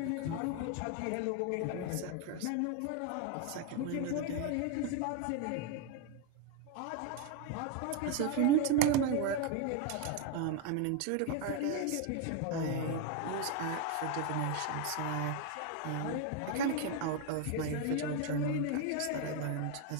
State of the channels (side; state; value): both; different; correlation 0.01